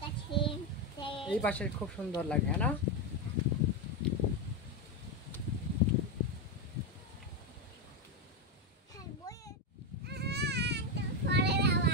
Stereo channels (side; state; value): both; normal; correlation 0.08